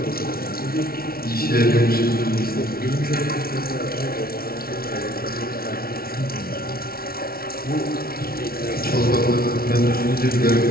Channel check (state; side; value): late; right; 0.44 ms